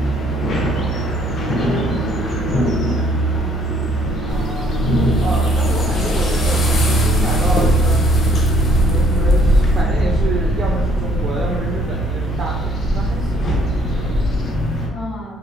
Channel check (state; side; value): normal; both; correlation 0.63